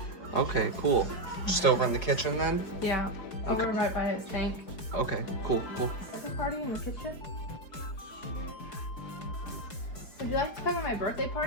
Okay, cool. Just over in the kitchen then? Yeah. Okay. Over right by his tank. Okay, cool. Birthday party in the kitchen? Would you like to come to my birthday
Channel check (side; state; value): right; late; 4.7 ms